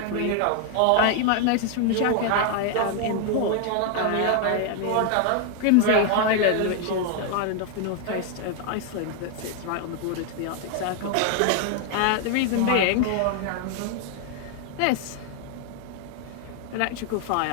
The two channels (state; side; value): different; both; correlation 0.00